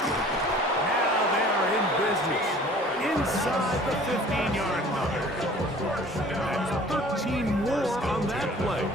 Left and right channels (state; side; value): normal; both; correlation 0.49